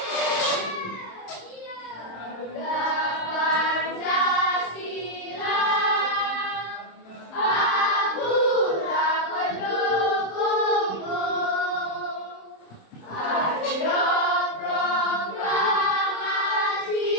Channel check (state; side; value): late; right; 26 ms